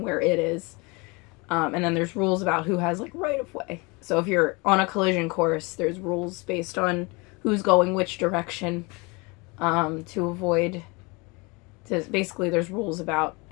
where it is. And then there's rules about who has like right of way. So if you're on a collision course, there's rules based on who's going which direction, to avoid. Basically, there's rules about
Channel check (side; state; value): right; quieter; 27.5 dB